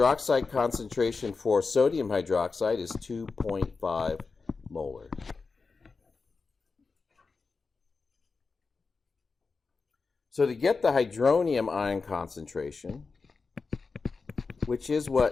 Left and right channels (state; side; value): quieter; right; 4.5 dB